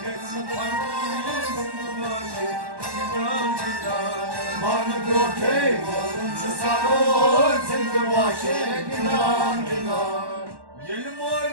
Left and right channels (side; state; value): left; late; 1.1 ms